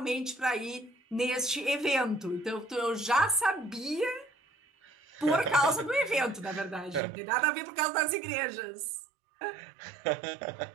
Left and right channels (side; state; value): left; drops out; at 7.0 s